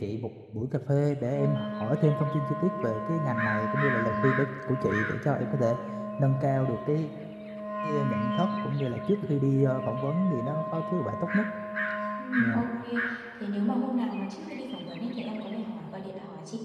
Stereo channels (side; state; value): both; identical; correlation 1.00